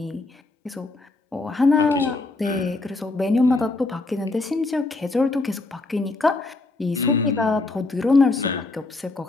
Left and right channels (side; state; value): right; quieter; 3.2 dB